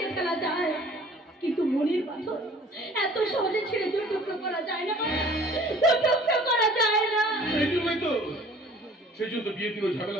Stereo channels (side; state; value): both; normal; correlation 0.51